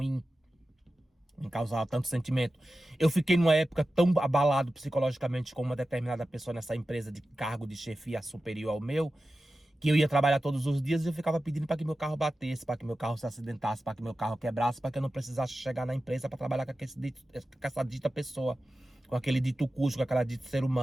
me causava tanto sentimento. Eu fiquei numa época tão abalado psicologicamente com uma determinada pessoa nessa empresa de cargo de chefia superior ao meu, que eu ia trabalhar todos os dias e eu ficava pedindo para que meu carro batesse, para que meu carro se acidentasse, para que meu carro quebrasse, para que eu não precisasse chegar na empresa para trabalhar com essa dita pessoa, com aquele dito cujo, com aquela dito ser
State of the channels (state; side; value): normal; both; correlation 0.93